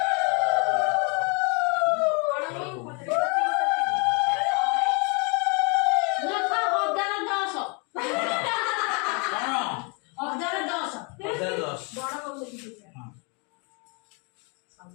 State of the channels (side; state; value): right; quieter; 33.8 dB